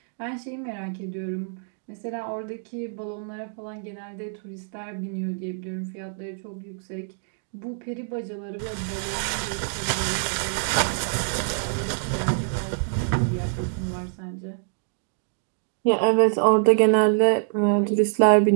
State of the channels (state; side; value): silent; left; digital silence